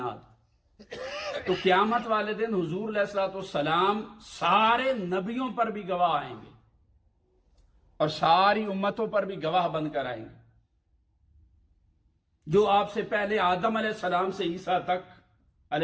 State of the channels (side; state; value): both; identical; correlation 1.00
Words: تو قیامت والے دن حضور علیہ الصلوۃ والسلام سارے نبیوں پر بھی گواہ آئیں گے اور ساری امتوں پر بھی گواہ بن کر آئیں گے. جو آپ سے پہلے آدم علیہ السلام سے عیسیٰ تک